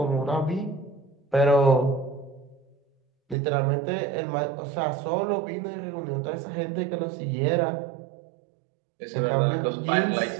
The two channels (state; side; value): drops out; left; at 3.4 s